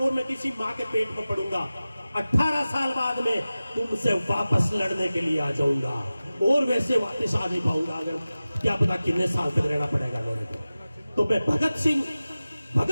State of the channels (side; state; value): both; inverted; correlation -0.96